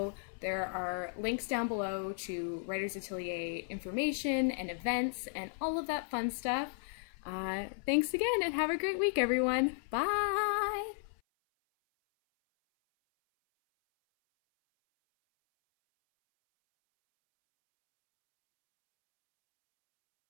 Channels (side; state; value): right; silent; 55 dB below the other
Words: there are links down below to Writers Atelier information and events and all of that fun stuff. Thanks again and have a great week, everyone. Bye!